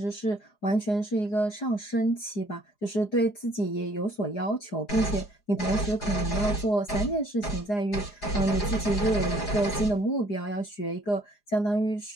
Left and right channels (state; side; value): late; right; 4.8 ms